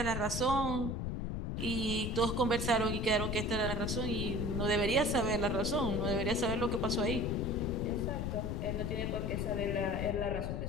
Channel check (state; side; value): noise; left; rumble, 2 dB below the sound